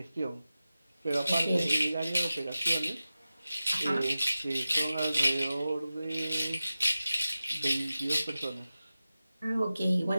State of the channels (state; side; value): inverted; both; correlation -0.94